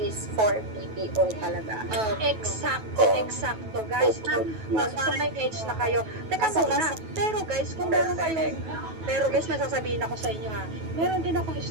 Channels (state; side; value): late; left; 9.2 ms